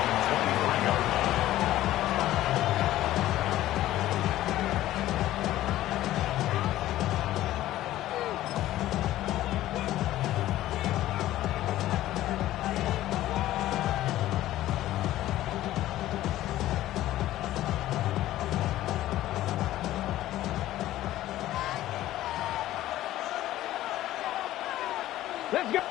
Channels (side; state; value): right; quieter; 14.5 dB